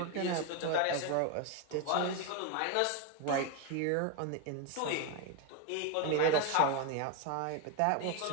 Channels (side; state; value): both; different; correlation 0.02